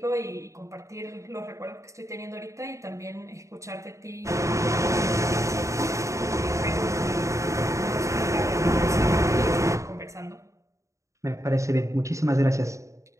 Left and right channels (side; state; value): left; late; 0.15 ms